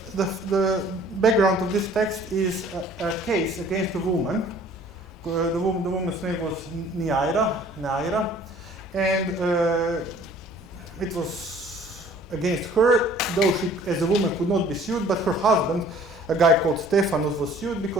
background of this text is a case against a woman. The woman's name was Neaira, and it was against her, though she, as a woman, could not be sued, but her husband, a guy called Stephanus, was sued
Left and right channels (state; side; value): normal; both; correlation 0.53